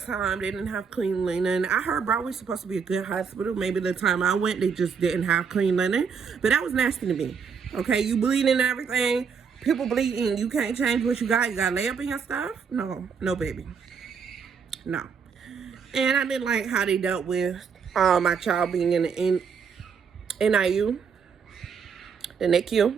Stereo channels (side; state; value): left; quieter; 6.2 dB